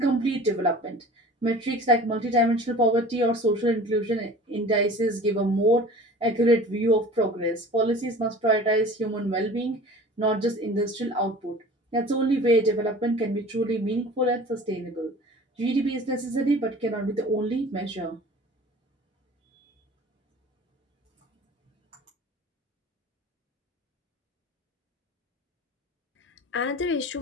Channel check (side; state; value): both; normal; correlation 0.42